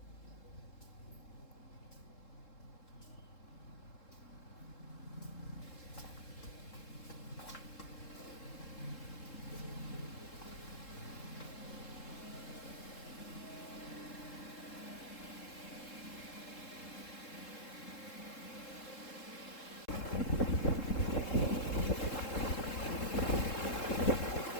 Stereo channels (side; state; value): right; late; 3.7 ms